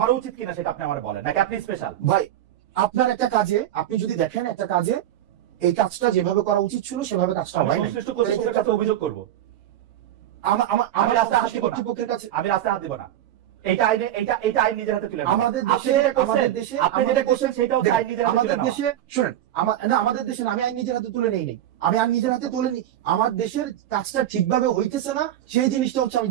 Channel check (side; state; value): left; quieter; 12.2 dB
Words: উচিত কিনা সেটা আপনি আমার বলেন, নাকি আপনি স্পেশাল? ভাই আপনার একটা কাজে, আপনি যদি দেখেন একটা কাজে এই কাজটা যেভাবে করা উচিত ছিল সেভাবে কাজটা হয় না, অভিযোগ করবো। আমি রাস্তায় হাত দিব না, আমি রাস্তায় হাত দিব না। এটা আইন নিজের হাতে তুলে নেওয়া। আমাদের দেশে আপনি যেটা করছেন সেটা হচ্ছে আইন নিজের হাতে তুলে আমাদের নেওয়া। দেশে শুনেন, আমাদের দেশে আমি আইন নিজের হাতে তুলে নেই নাই, আমি আইন নিজের হাতে তুলে নিই। আমার দেশের কাজটা ঠিকভাবে হইতেছে না, সেই জিনিসটা হচ্ছে আমি